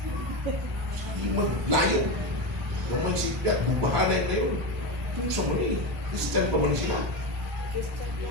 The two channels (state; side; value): normal; both; correlation 0.18